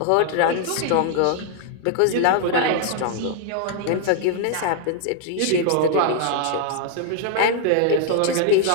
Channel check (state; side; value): different; both; correlation 0.00